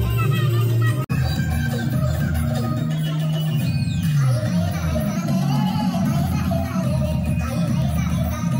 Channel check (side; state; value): both; identical; correlation 1.00